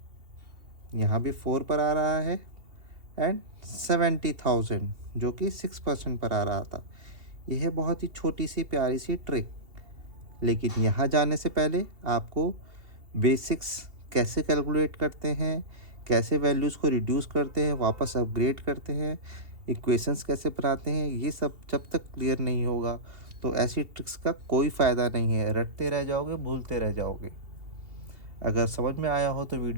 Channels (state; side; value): late; left; 2.7 ms